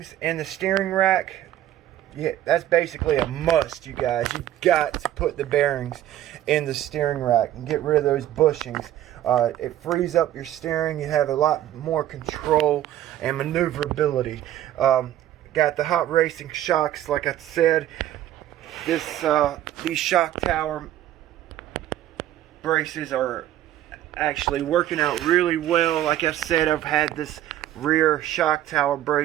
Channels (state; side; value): quieter; left; 12.7 dB